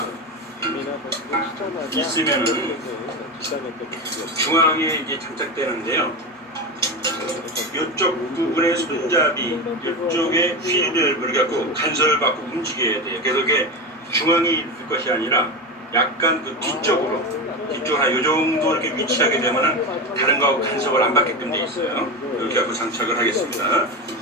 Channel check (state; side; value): normal; both; correlation 0.20